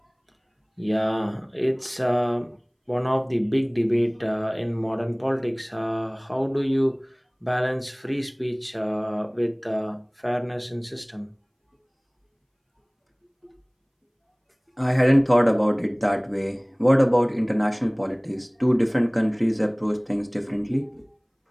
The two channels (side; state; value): both; identical; correlation 1.00